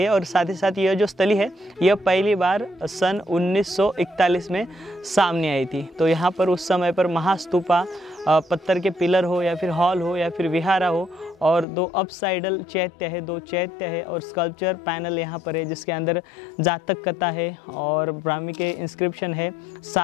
और साथ ही साथ यह जो स्थली है यह पहली बार सन 1941 में सामने आई थी। तो यहाँ पर उस समय पर महास्तूपा, पत्थर के पिलर हो या फिर हॉल हो या फिर विहारा हो, और 2 अपसाइडल चैत्य है, 2 चैत्य है और स्कल्पचर पैनल यहाँ पर है जिसके अंदर जातक कथा है और ब्राह्मी के इंस्क्रिप्शन है।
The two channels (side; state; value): right; drops out; at 11.7 s